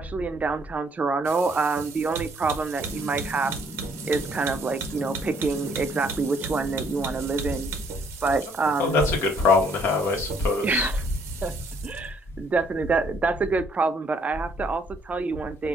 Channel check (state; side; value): normal; both; correlation 0.65